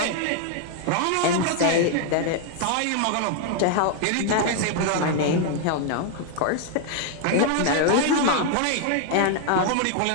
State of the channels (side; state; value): both; different; correlation 0.00